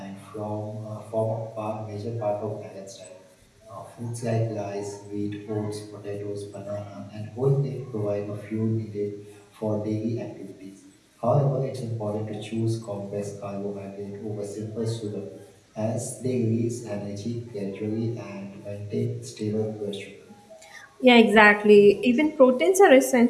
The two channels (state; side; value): identical; both; correlation 1.00